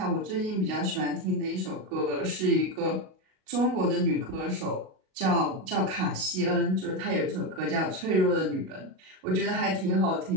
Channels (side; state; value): left; late; 37 ms